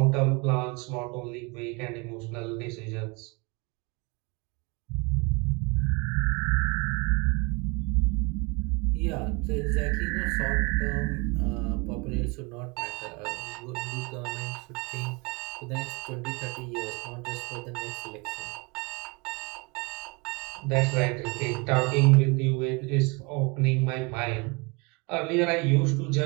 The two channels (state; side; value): quieter; left; 29.1 dB